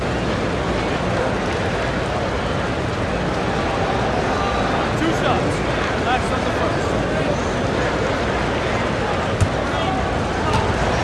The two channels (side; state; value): both; identical; correlation 1.00